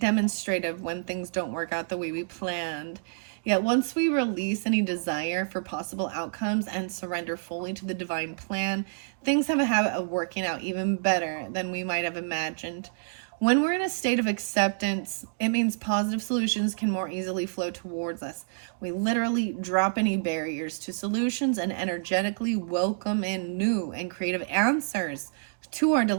when things don't work out the way we planned. Yet once we release any desire for possible outcomes and surrender fully to the divine plan, things have a habit of working out even better than we might have imagined. When we're in a state of acceptance, it means positive solutions can more easily flow towards us. We literally drop any barriers to solutions and energetically welcome in new and creative answers to our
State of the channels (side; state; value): left; silent; digital silence